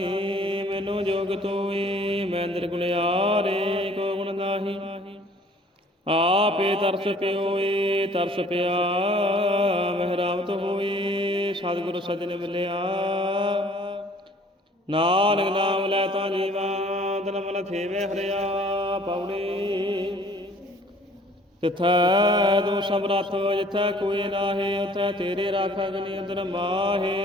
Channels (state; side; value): normal; both; correlation 0.55